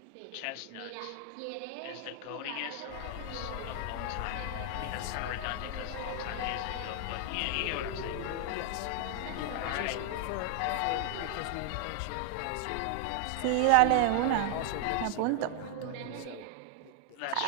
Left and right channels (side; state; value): both; different; correlation 0.00